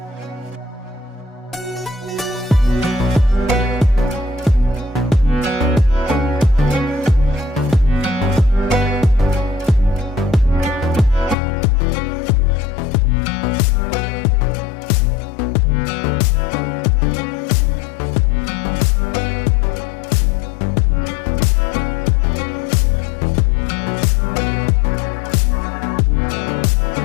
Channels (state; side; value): drops out; right; at 11.4 s